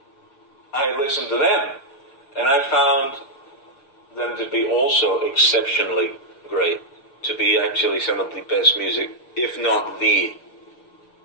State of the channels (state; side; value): late; right; 6.6 ms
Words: I listened to them, and I found them to be also exceptionally great, to be actually some of the best music, if not the.